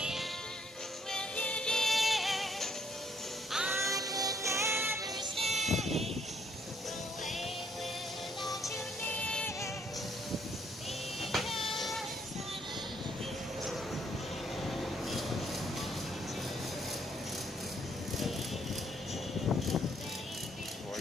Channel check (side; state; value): both; normal; correlation 0.69